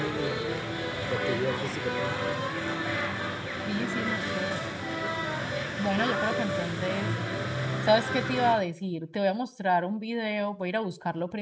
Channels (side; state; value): both; identical; correlation 1.00